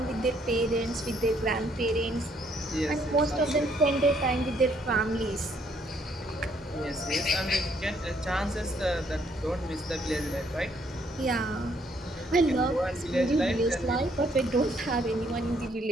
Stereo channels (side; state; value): both; normal; correlation 0.68